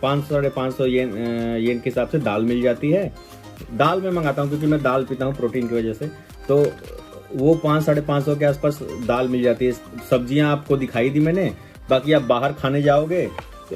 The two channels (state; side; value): identical; both; correlation 1.00